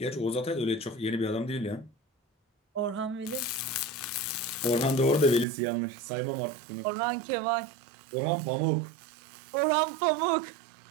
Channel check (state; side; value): drops out; left; at 5.5 s